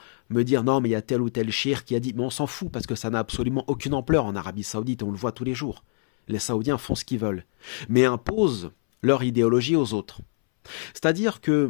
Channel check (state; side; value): silent; right; 62 dB below the other